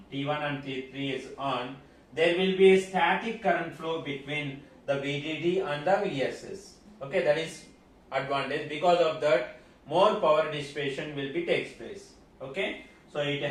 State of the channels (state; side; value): identical; both; correlation 1.00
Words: on, there will be a static current flow between the VDD and the VSS. Okay, that is advantage. Because of that, more power dissipation will be takes place. Okay, so it